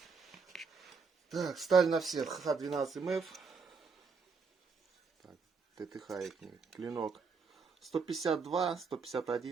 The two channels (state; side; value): quieter; left; 5.1 dB